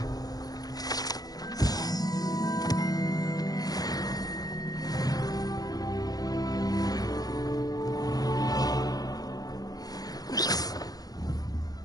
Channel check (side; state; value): right; late; 0.19 ms